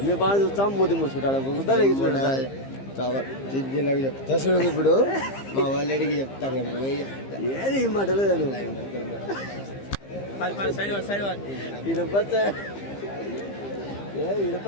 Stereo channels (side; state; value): right; late; 15 ms